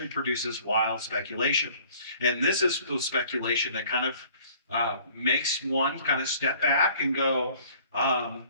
produces wild speculation. And this is the speculation that kind of makes one kind of step back and go,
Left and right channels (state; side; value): inverted; both; correlation -0.54